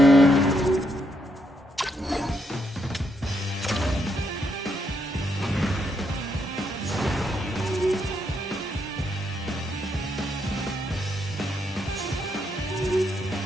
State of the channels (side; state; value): both; normal; correlation 0.77